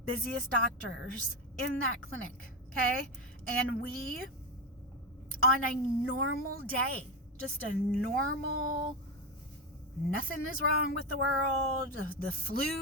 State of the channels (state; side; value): normal; both; correlation 0.13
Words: doctors in that clinic, okay? And we, on a normal day, just a normal, nothing is wrong with the world, the